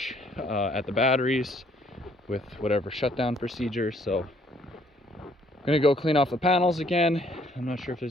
at the batteries with whatever shutdown procedure. So I'm gonna go clean off the panels again. I'm not sure if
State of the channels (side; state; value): both; normal; correlation 0.64